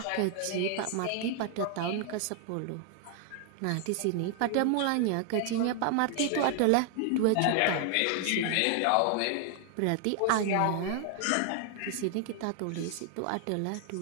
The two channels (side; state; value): both; different; correlation 0.00